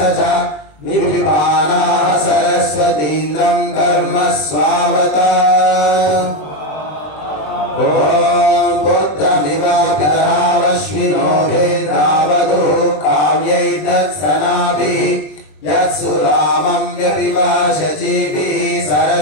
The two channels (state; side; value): late; right; 20 ms